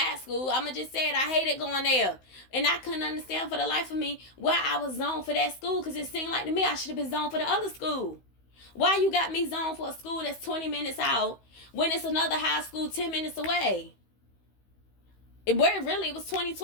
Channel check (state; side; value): late; right; 16 ms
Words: school. I'ma just say it. I hated going there. And I couldn't understand for the life of me why I was zoned for that school, because it seemed like to me I should have been zoned for the other school. Why you got me zoned for a school that's 20 minutes out when it's another high school 10 minutes away? It was 20,